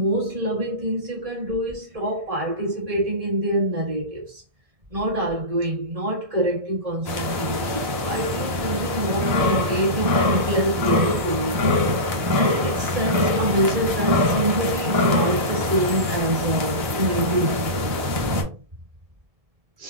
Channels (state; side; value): late; left; 1.7 ms